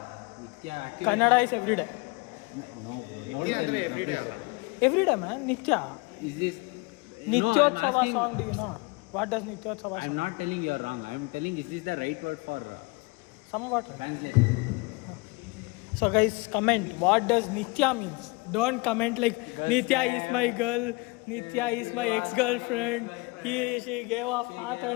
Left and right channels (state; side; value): quieter; right; 26.9 dB